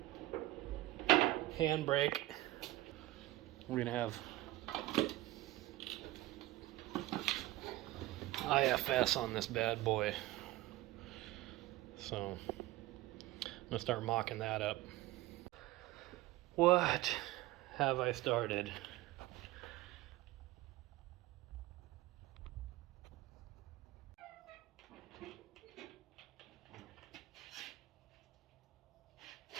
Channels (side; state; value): left; quieter; 17.6 dB